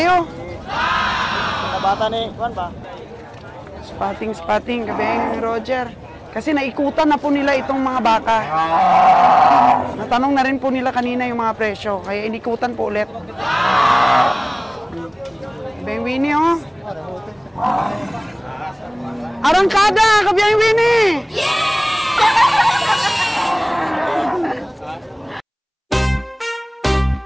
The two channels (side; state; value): both; identical; correlation 1.00